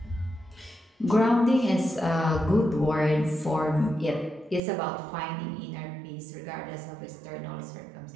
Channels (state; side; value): drops out; left; at 4.6 s